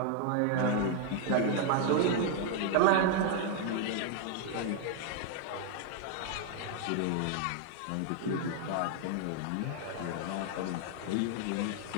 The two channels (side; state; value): both; different; correlation 0.00